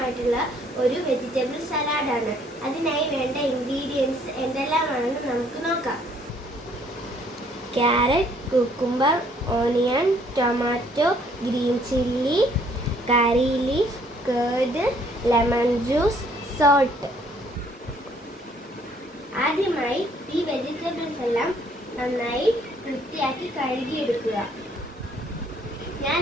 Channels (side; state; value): both; normal; correlation 0.63